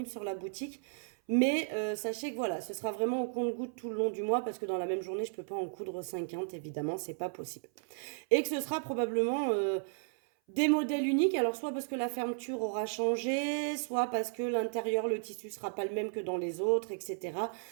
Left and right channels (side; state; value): left; silent; 55 dB below the other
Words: sur la boutique. Mais sachez que voilà, ce sera vraiment au compte-gouttes tout le long du mois parce que dans la même journée, je ne peux pas en coudre 50, évidemment, c'est pas possible. Et que ce sera probablement des modèles uniques, alors soit parce que la fermeture aura changé, soit parce que l'intérieur, le tissu sera pas le même que dans les autres, etc.